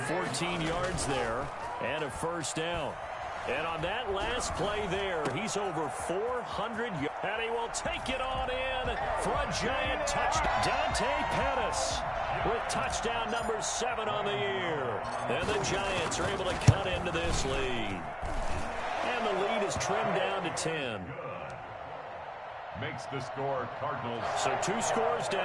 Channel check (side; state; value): both; identical; correlation 1.00